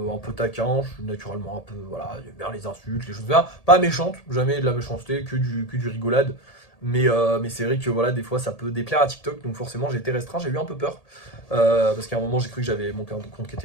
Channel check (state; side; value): late; right; 1.8 ms